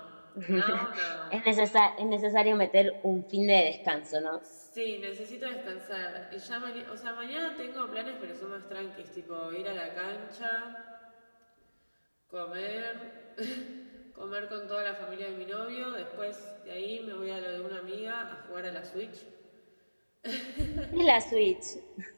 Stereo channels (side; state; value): both; inverted; correlation -1.00